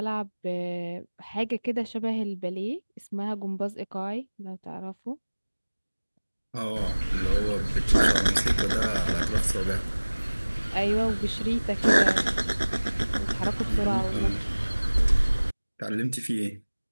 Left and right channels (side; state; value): both; inverted; correlation -1.00